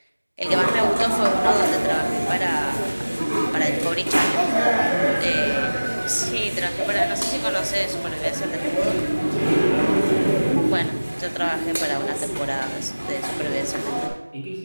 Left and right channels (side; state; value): both; inverted; correlation -1.00